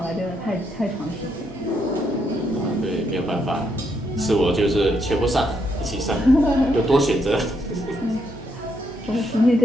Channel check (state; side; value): normal; both; correlation 0.77